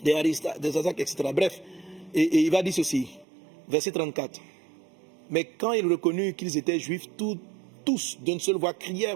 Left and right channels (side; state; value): left; drops out; at 3.2 s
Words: des Aristarque, des Aristarque, etc. Bref, et il va dire ceci, verset 34. Mais quand il reconnut qu'ils étaient juifs, tous d'une seule voix crièrent